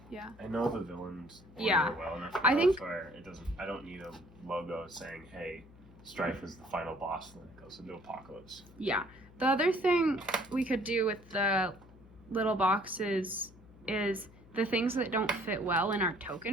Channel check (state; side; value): noise; left; hum, 22 dB below the sound